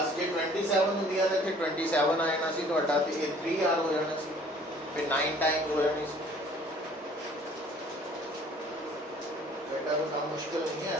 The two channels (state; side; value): normal; both; correlation 0.54